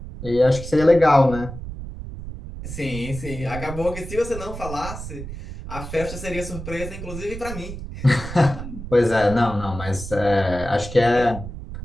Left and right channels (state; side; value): noise; right; rumble, 10 dB below the sound